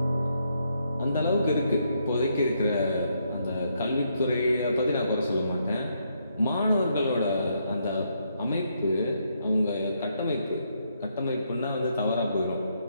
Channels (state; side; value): inverted; both; correlation -0.76